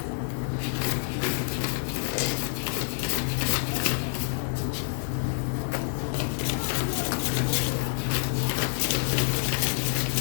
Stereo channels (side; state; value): right; silent; 60 dB below the other